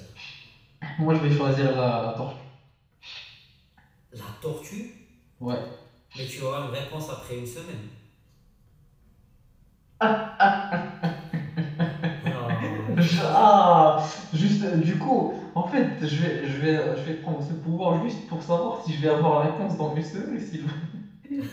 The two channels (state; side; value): identical; both; correlation 1.00